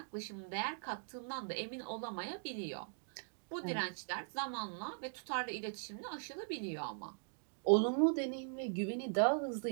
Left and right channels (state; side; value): silent; left; digital silence